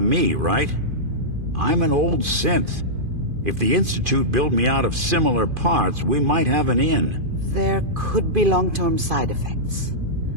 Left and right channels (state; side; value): late; left; 2.5 ms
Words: me, right? I'm an old synth. If the Institute built me out of similar parts, we might have an in. There could be long-term side effects.